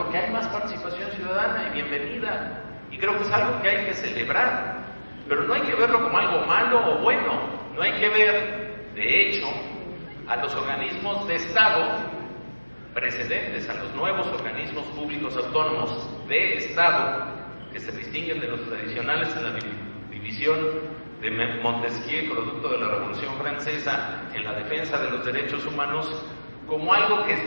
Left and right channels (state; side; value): inverted; both; correlation -1.00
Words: hay más participación ciudadana, y bienvenida. Y creo que es algo que hay que celebrar. Pero no hay que verlo como algo malo o bueno. No hay que ver, de hecho, a los organismos de Estado precedentes, a los nuevos organismos públicos autónomos de Estado, que se distinguen de los tradicionales en la división de Montesquieu, producto de la Revolución Francesa, en la defensa de los derechos humanos, como algo que